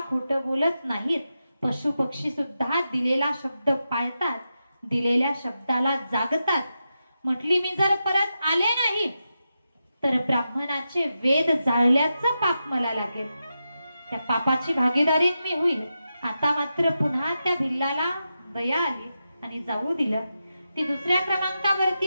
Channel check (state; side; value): inverted; both; correlation -0.89